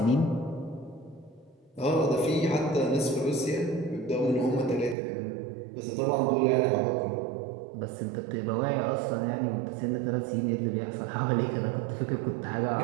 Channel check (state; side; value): drops out; left; at 5.0 s